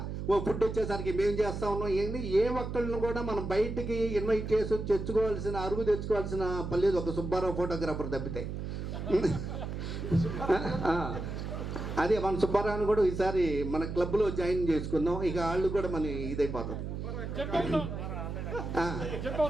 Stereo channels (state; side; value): noise; right; hum, 5 dB below the sound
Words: ఓ ఫుడ్ వచ్చేసరికి మేము చేస్తా ఉన్నాం. ఏంటి ఏ ఒక్కళ్ళని కూడా మనం బయటికి ఇన్వైట్ చేసి తెచ్చుకోవాల్సిన పని లేదు, ఒక సుబ్బారావు ఫోటోగ్రాఫర్ తప్పితే. అదే మన సుబ్బారావుని కూడా ఈసారి మన క్లబ్లో జాయిన్ చేసుకుందాం, ఇక వాళ్ళు కూడా మన ఇదైపోతుంది